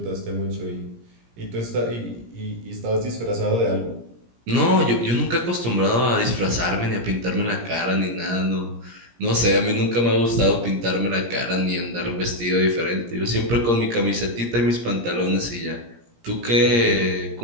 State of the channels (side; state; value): left; late; 17 ms